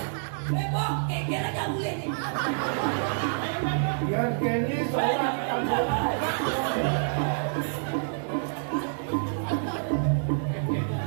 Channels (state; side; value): silent; left; digital silence